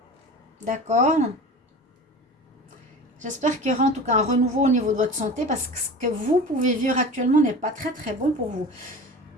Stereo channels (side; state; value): both; normal; correlation 0.35